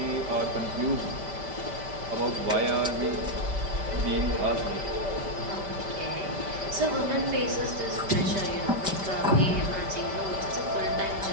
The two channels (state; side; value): late; left; 5.1 ms